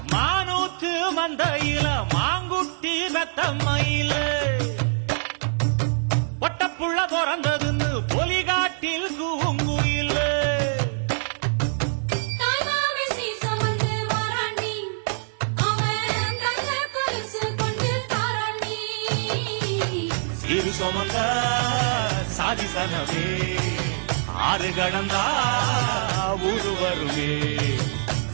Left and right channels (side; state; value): left; silent; digital silence